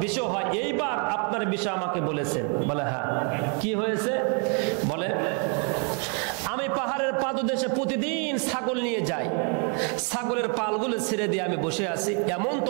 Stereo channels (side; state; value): left; quieter; 39.2 dB